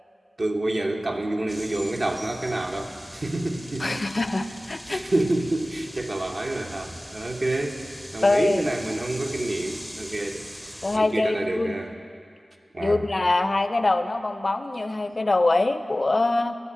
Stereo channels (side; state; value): both; normal; correlation 0.97